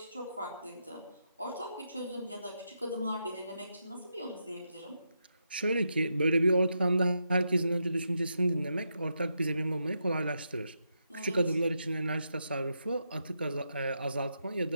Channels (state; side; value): inverted; both; correlation -0.84